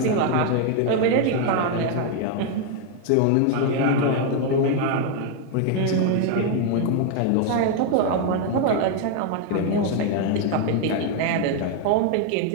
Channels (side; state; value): both; different; correlation 0.00